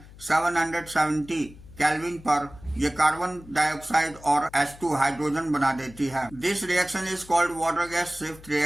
770 केल्विन पर ये कार्बन डाइऑक्साइड और H2 हाइड्रोजन बना देती है। This reaction is called water gas shift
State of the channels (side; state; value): left; noise; hum, 20 dB below the sound